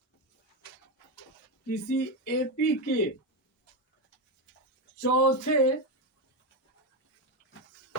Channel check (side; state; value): both; normal; correlation 0.11